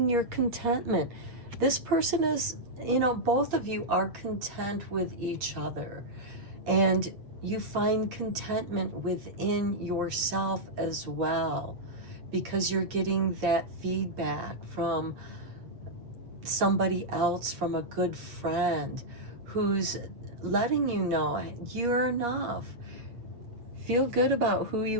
your contentment. This person is, both of you are content with each other, and you find contentment within yourself as well, because you're getting that feedback from somebody else, from a good friend who's letting you know you're enough. Feel good about who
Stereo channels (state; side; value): late; left; 8.5 ms